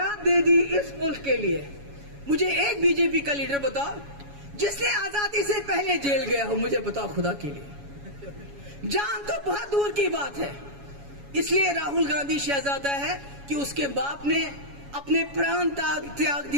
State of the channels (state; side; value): late; left; 7.1 ms